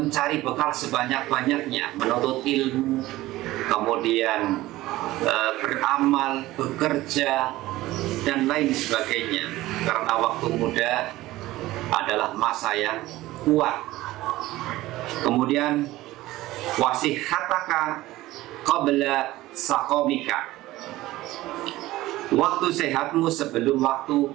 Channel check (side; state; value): left; quieter; 17.2 dB